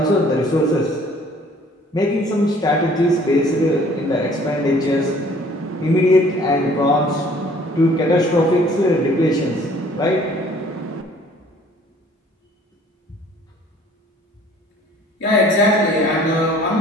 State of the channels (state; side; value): normal; both; correlation 0.55